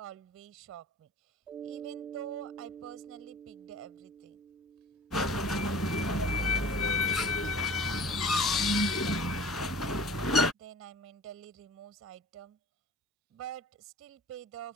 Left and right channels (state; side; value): normal; both; correlation 0.44